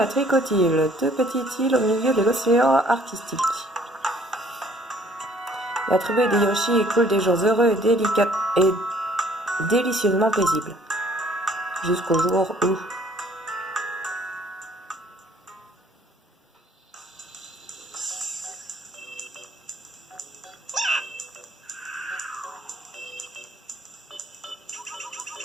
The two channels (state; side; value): normal; both; correlation 0.59